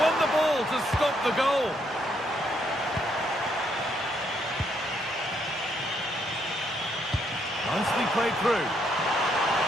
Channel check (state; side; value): normal; both; correlation 0.73